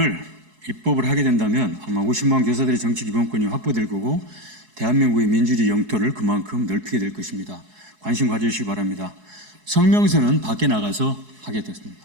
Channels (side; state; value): left; late; 4.7 ms